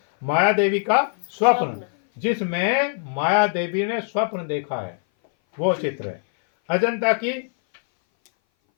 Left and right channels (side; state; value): right; silent; 59 dB below the other